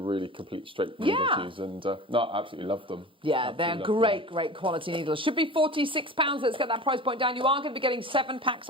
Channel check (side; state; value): both; normal; correlation 0.35